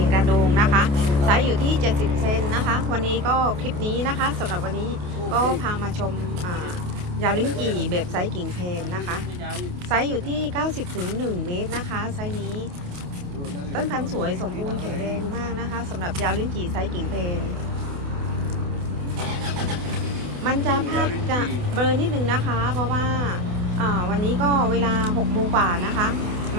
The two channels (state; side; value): late; left; 28 ms